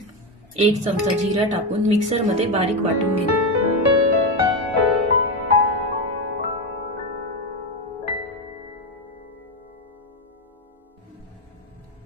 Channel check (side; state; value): both; normal; correlation 0.12